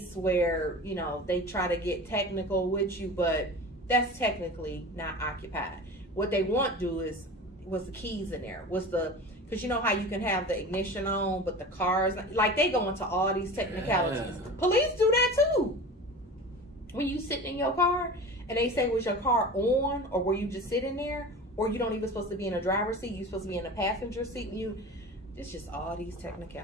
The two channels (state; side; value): normal; both; correlation 0.34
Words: where, they try to get technical with you, but that's technically not occupied. What they want to do is, was the keys in there? Because you know how you can have the ignition on, but the cars, like, they go into all these technicalities. Yeah. Police do that too. When you sitting in your car and they say, was your car on, or were you just sitting there, or you don't even supposed to be in a driver's seat, you're supposed to be in a passenger seat. It's just all these